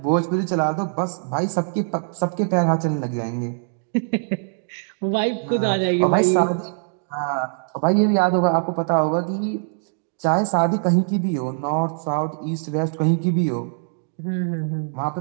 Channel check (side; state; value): left; silent; digital silence